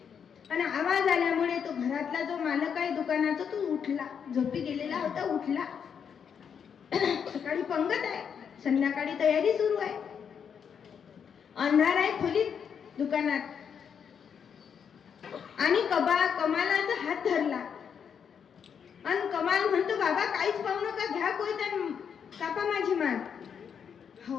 आणि आवाज आल्यामुळे तो घरातला जो मालक आहे दुकानाचा तो उठला. झोपी गेलेला होता, उठला. सकाळी पंगत आहे, संध्याकाळी तयारी सुरू आहे. अंधार आहे खोलीत दुकानात आणि कमालाचा हात धरला आणि कमाल म्हणतो, बाबा काहीच पाहू नका, घ्या कोयता कापा माझी मान. हो,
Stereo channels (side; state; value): right; quieter; 7.3 dB